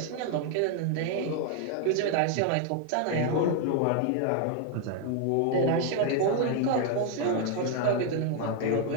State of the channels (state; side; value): different; both; correlation 0.00